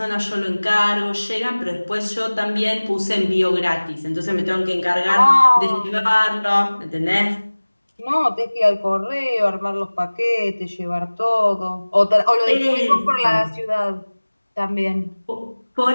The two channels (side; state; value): both; inverted; correlation -1.00